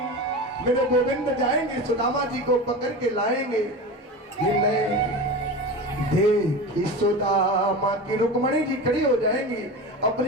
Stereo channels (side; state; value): both; normal; correlation 0.28